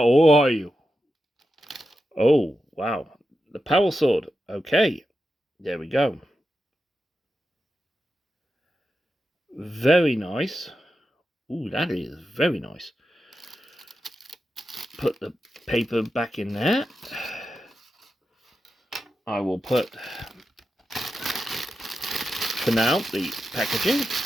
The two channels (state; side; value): normal; both; correlation 0.89